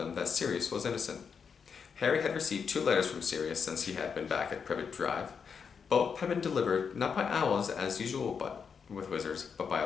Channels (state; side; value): quieter; right; 6.3 dB